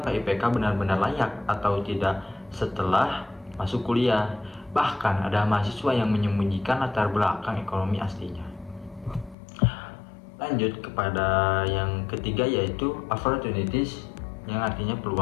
benar-benar layak atau tidak setelah masuk kuliah. Bahkan ada mahasiswa yang menyembunyikan latar belakang ekonomi aslinya. Lanjut kepada yang ketiga yaitu opportunities, yang artinya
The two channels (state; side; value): drops out; right; at 9.3 s